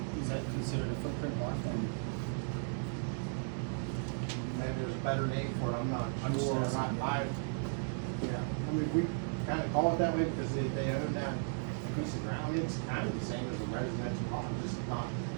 is that considered a footprint lot then? Maybe there's a better name for it, I'm not I'm just sure. asking. Yeah, I mean, we kind of call it that way because they own that piece of ground. It's kind of the same as a residential lot, just not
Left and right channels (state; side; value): silent; left; digital silence